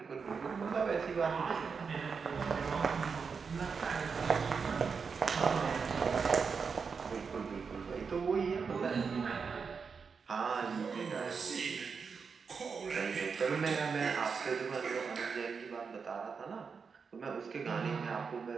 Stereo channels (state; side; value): quieter; left; 5.6 dB